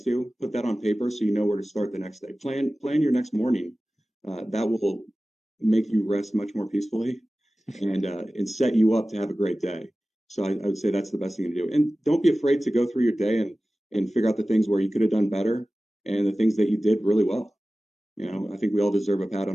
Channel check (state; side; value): normal; both; correlation 0.96